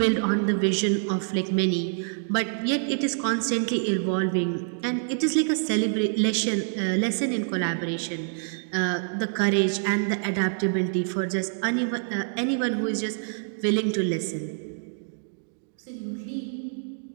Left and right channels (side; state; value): left; silent; digital silence